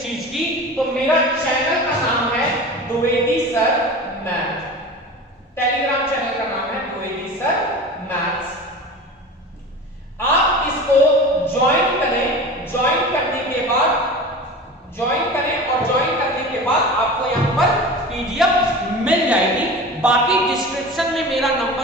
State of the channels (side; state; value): both; normal; correlation 0.34